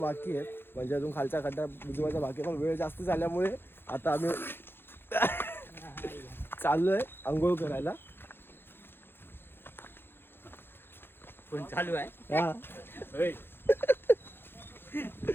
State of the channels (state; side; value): late; right; 0.10 ms